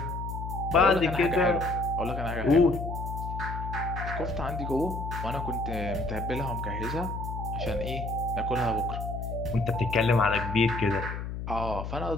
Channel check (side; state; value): left; noise; hum, 6 dB below the sound